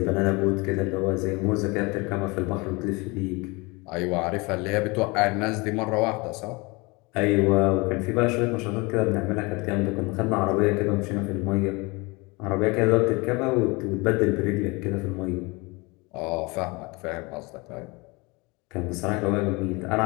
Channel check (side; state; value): right; quieter; 26.2 dB